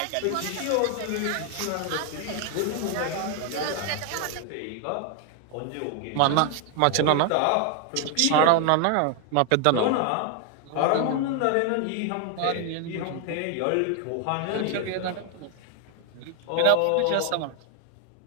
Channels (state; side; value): different; both; correlation 0.00